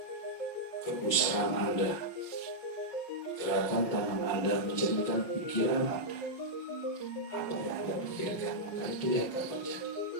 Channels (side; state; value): right; late; 5.3 ms